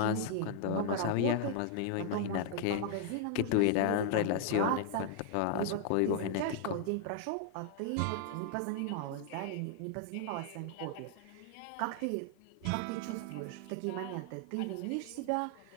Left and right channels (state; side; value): different; both; correlation 0.00